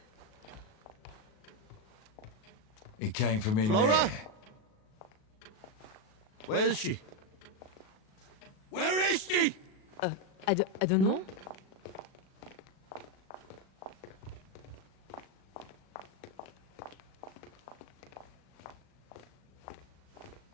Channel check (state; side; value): late; right; 37 ms